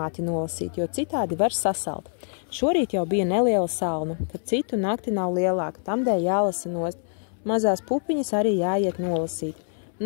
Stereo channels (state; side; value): silent; right; 61 dB below the other